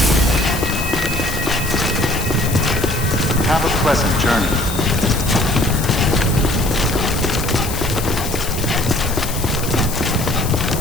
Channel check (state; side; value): noise; left; hiss, 8 dB below the sound